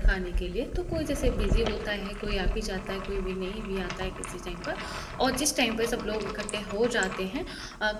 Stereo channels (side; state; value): both; identical; correlation 1.00